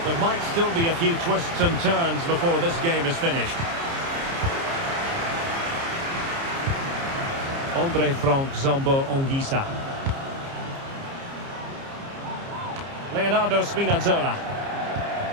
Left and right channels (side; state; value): left; late; 30 ms